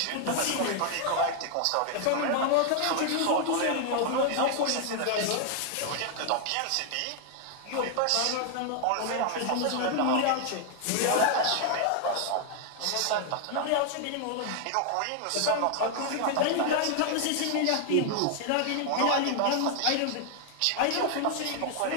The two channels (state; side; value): different; both; correlation 0.00